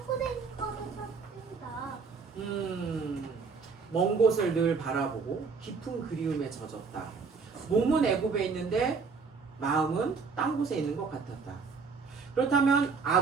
곳에 있는 것같습니다. 먼 곳을 늘 바라보고 깊은 그리움에 젖었다. 몸은 애굽에 있는데 마음은 딴 곳에 있는 것 같았다. 그렇다면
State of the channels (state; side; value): quieter; left; 5.0 dB